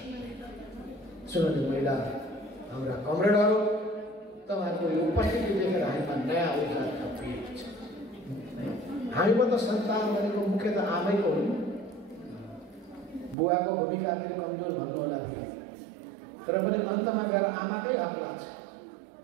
सुनौती महिला हाम्रा कमरेडहरू, तपाईँहरूको यो उपस्थिति देखेर हामीमा नयाँ ऊर्जा थपिएको छ। हामीमा त सन्तान भनेको मुख्यतः आमैको हो, बुवाको भूमिका फेरि कमजोर भन्नु होला थियो, तर पनि अन्तमा गएर आमाकै हक लाग्छ,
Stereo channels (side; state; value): left; drops out; at 13.4 s